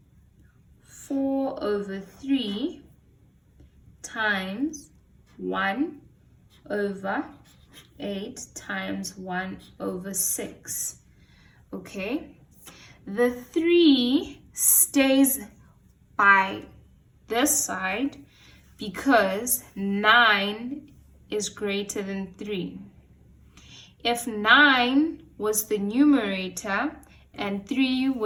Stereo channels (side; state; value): both; identical; correlation 1.00